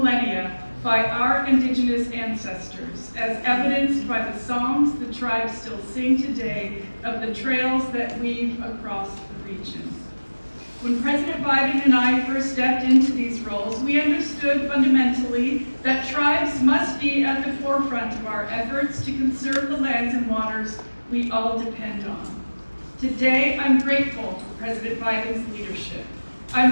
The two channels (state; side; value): inverted; both; correlation -1.00